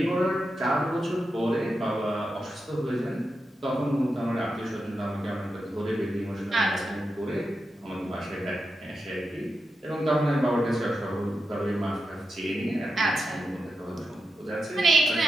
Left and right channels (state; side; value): normal; both; correlation 0.88